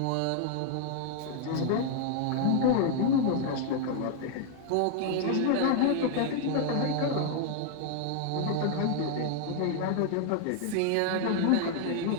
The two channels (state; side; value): different; both; correlation 0.00